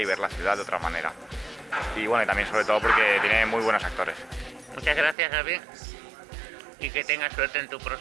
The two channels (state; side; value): drops out; left; at 5.2 s